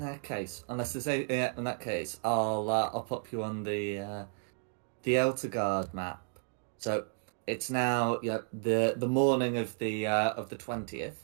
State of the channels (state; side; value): silent; left; 56 dB below the other